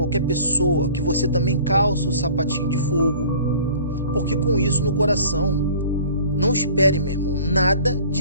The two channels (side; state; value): both; inverted; correlation -0.47